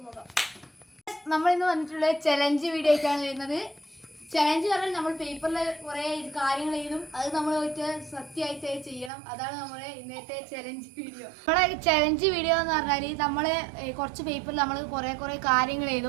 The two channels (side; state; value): left; drops out; at 9.1 s